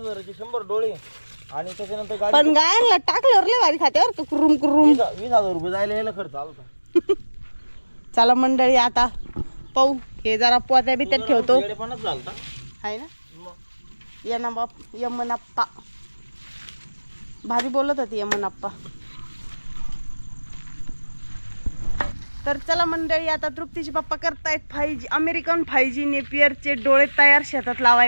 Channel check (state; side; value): inverted; both; correlation -1.00